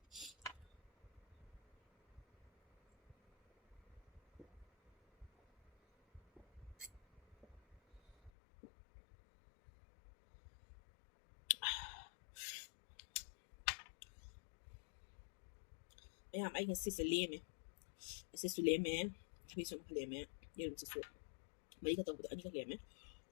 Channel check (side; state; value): right; drops out; at 8.3 s